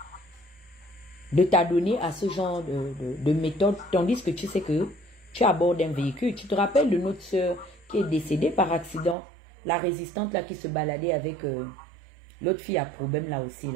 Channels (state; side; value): drops out; left; at 9.2 s